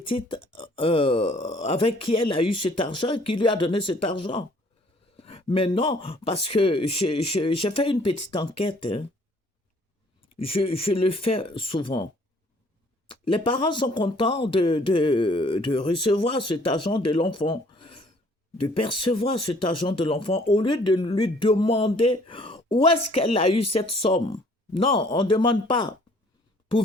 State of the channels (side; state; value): both; normal; correlation 0.59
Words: avec qui elle a eu cet argent, qui lui a donné cet argent? Mais non, parce que j'ai fait une petite enquête. Hein. Je le fais souvent. Les parents sont contents de recevoir cet argent de l'enfant, de percevoir cet argent de l'enfant, au lieu de lui demander où est-ce qu'elle a eu cette somme. Non, on ne demande pas.